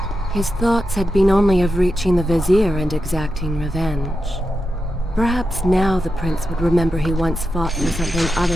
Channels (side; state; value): both; normal; correlation 0.88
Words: His thoughts had been only of reaching the vizier and exacting revenge. Perhaps now the prince would remember he once fought for something other